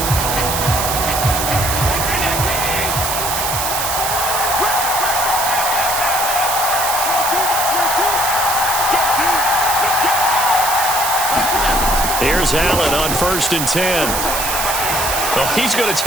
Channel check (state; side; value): noise; right; hiss, 1 dB below the sound